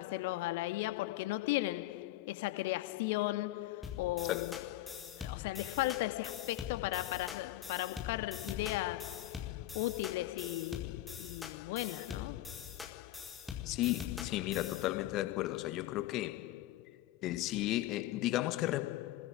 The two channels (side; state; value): right; quieter; 15.5 dB